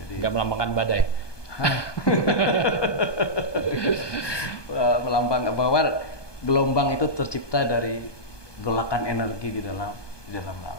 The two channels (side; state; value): right; late; 1.2 ms